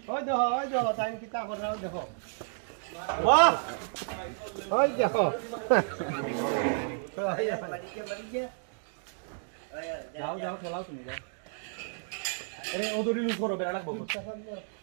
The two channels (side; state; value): left; silent; digital silence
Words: ওই দেখো টাইম কিতা করে দেখো বাহ ওই দেখো যাও যাও খেলাও তুমি যাও আরে ওদরি লুজ করো বেড়া লাগবো